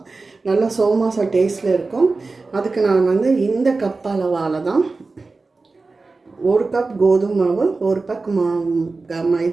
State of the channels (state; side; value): quieter; left; 3.8 dB